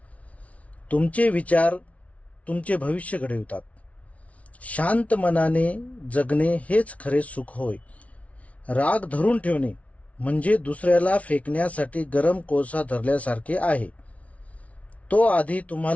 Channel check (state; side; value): late; right; 0.066 ms